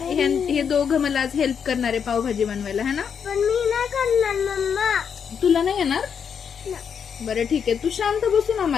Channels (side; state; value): right; quieter; 7.2 dB